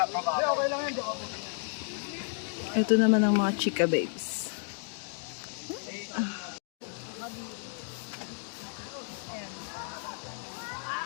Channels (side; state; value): right; silent; 56 dB below the other